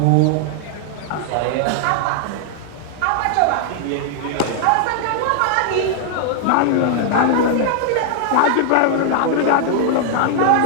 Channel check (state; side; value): different; both; correlation 0.00